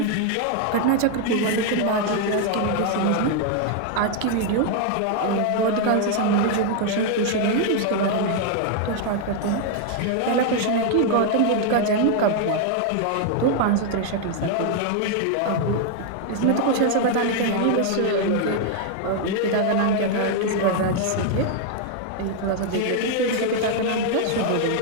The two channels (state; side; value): different; both; correlation 0.00